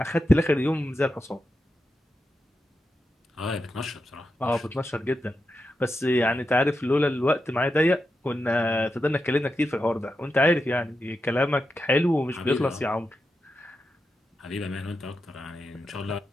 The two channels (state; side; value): normal; both; correlation 0.88